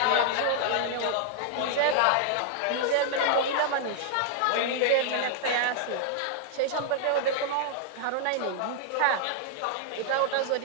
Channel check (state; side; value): different; both; correlation -0.01